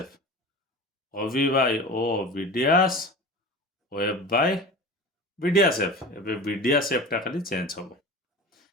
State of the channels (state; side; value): normal; both; correlation 0.34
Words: O B by O B dash O F by B dash F एबे B dash F टा खाली change हबो